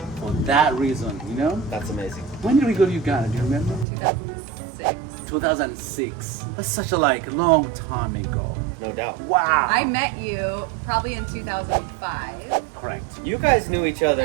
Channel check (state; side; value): drops out; left; at 3.9 s